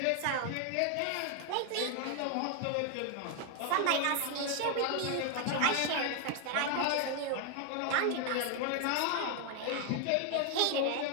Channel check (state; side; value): different; both; correlation 0.01